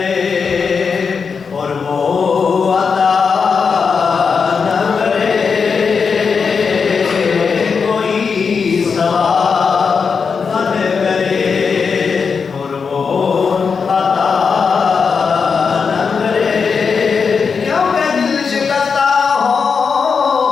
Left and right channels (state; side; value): quieter; right; 5.6 dB